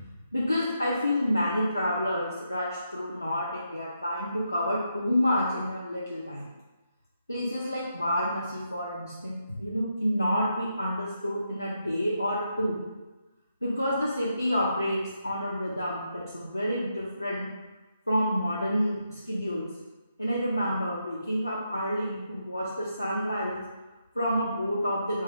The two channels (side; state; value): both; inverted; correlation -0.82